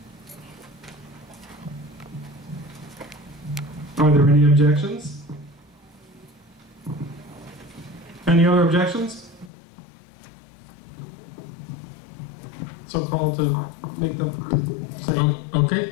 Are there any objections? Any other objections? So call to make them say. Okay,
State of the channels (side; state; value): right; drops out; at 9.5 s